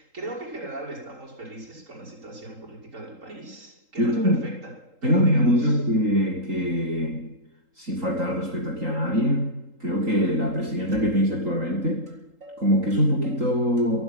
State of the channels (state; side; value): late; left; 3.8 ms